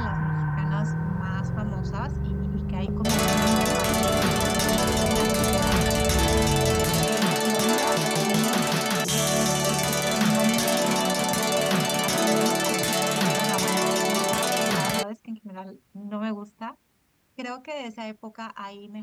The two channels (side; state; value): both; identical; correlation 1.00